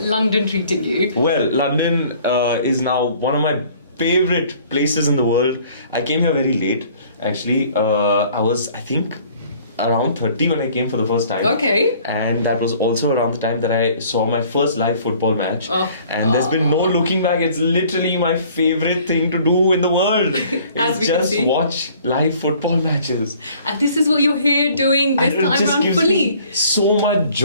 London treating you? Well, London is now one of my favorite places in the world. I came here very late, actually. I was, I think, around 30 when I came for the first time. Okay. And that was also around the time that I saw my first live football match. And there's been no looking back. It's literally my favorite thing to do in the world. As we It's can just see. watch live football matches. And this is what you're here doing this And it time just around gives fully. me so much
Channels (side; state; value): both; inverted; correlation -0.55